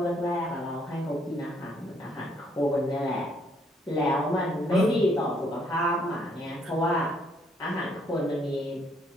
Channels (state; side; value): normal; both; correlation 0.68